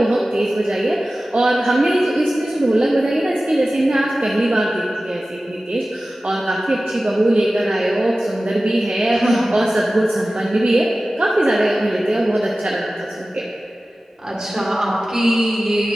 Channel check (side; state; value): both; normal; correlation 0.96